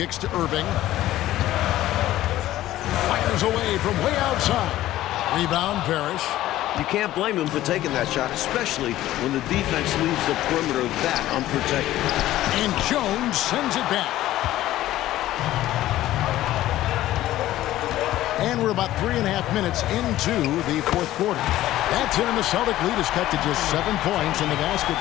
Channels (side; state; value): right; quieter; 14.6 dB